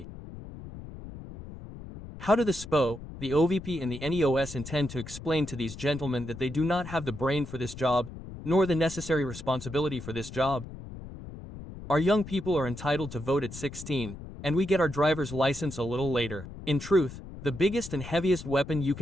How do the SPÖ, the OVP and the NEOS intend to explain to these gentlemen that they do not have the brain for this job, nor the necessary responsibility for this job? Our young people are entitled to vote at 16, and we get our driver's license a little later. In truth, the biggest and heaviest weapon you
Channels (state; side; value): noise; left; rumble, 13 dB below the sound